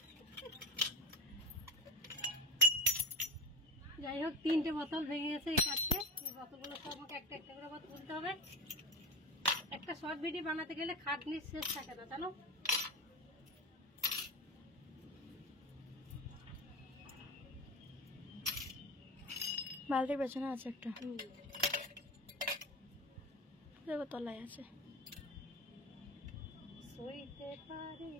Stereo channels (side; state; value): both; normal; correlation 0.27